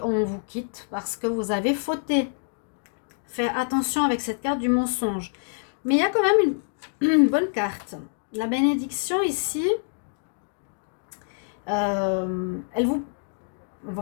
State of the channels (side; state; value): right; silent; digital silence